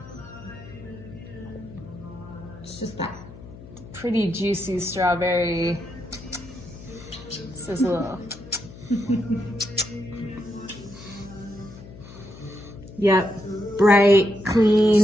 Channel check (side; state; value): left; noise; hum, 16 dB below the sound